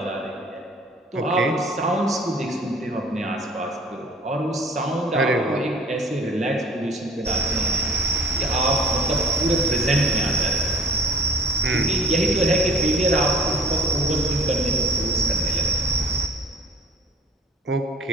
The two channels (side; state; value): both; normal; correlation 0.50